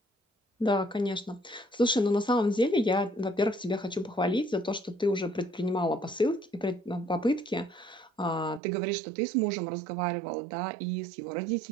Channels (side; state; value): left; drops out; at 8.6 s